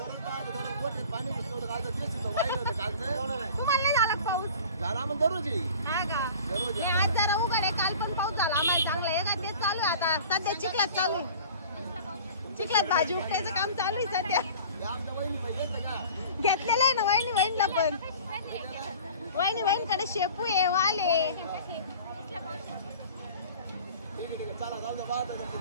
तुम्हाला नाही झाला का पाऊस? झाला मग दररोज हा का? हे आज जरा उघड आहे. काल पण पाऊस झाला आम्हाला चांगला आहे का? तेच चालू आहे आता. सध्या चिखलात चालू आहे. चिखलात भाजी उपटायचं काम चालू आहे सध्या. घेतलेलं आहे ना वहिनीला पण. वहिनीकडे शेपू आहे, वाल आहे.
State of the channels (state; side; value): inverted; both; correlation -0.42